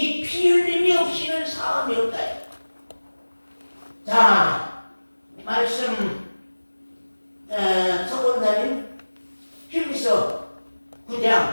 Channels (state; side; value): inverted; both; correlation -1.00